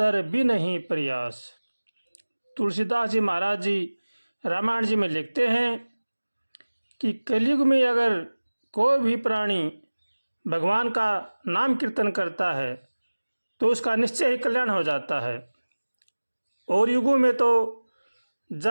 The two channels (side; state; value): both; inverted; correlation -1.00